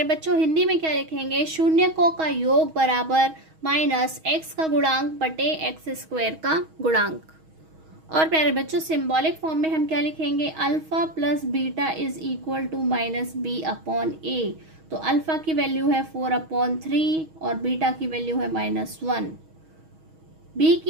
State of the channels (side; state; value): left; late; 6.3 ms